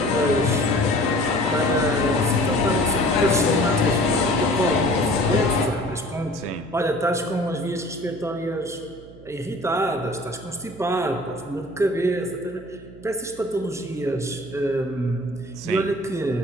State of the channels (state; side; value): noise; right; hum, 20 dB below the sound